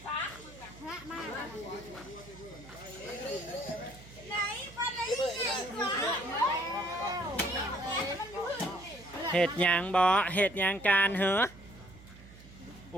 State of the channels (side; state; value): right; noise; hum, 19 dB below the sound